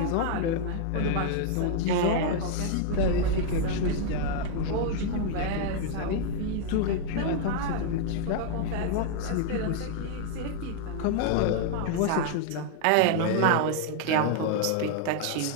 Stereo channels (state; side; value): different; both; correlation 0.00